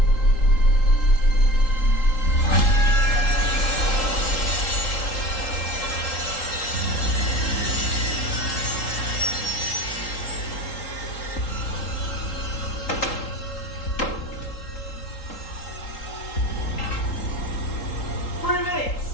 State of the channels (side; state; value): right; late; 3.8 ms